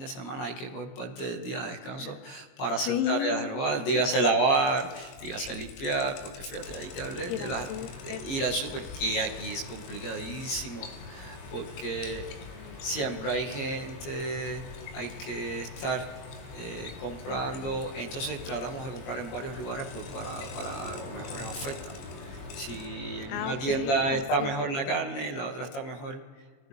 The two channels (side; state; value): right; late; 22 ms